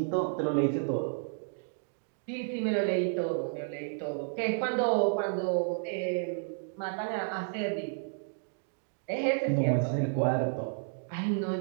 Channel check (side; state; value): left; silent; digital silence